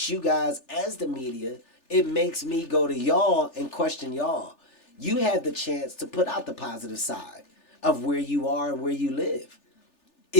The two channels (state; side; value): late; right; 3.4 ms